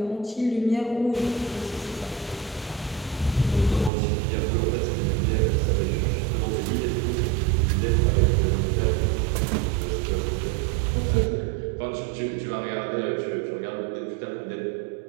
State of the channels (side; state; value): left; drops out; at 3.9 s